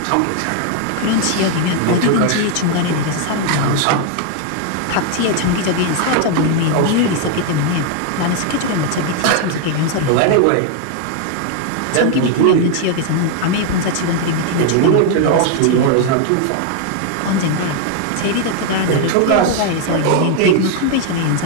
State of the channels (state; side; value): different; both; correlation 0.00